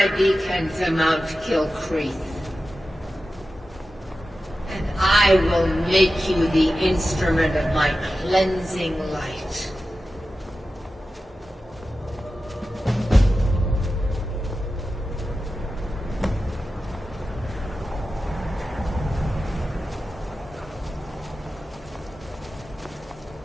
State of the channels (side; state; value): both; normal; correlation 0.93